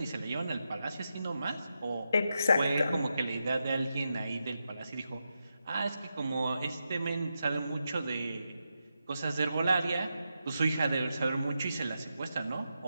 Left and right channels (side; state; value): both; inverted; correlation -0.87